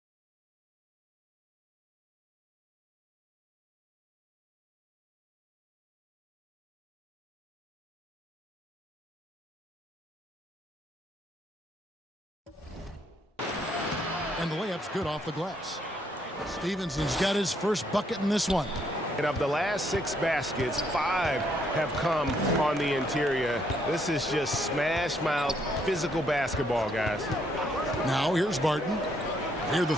And the layup's good off the glass. Stevenson's got his first bucket in this one. And of the last 6 baskets, 5 have come on the interior. This is just smash mouth physical basketball, guys. Now here's Barton. Near the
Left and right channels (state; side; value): normal; both; correlation 0.71